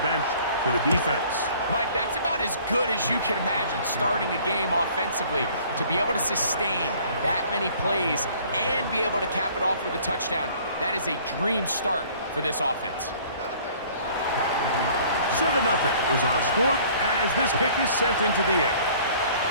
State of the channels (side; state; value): both; inverted; correlation -0.54